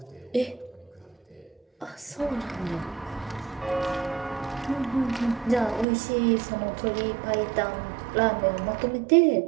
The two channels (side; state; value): left; drops out; at 5.9 s